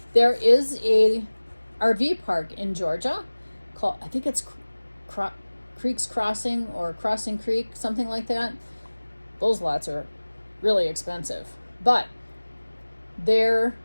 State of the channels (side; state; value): both; inverted; correlation -1.00